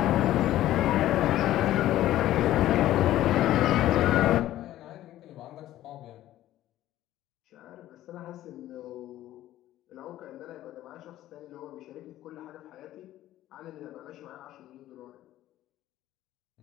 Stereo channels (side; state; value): right; quieter; 14.0 dB